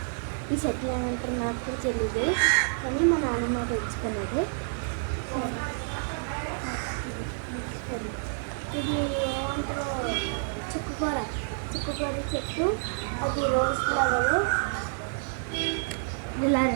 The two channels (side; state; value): left; silent; digital silence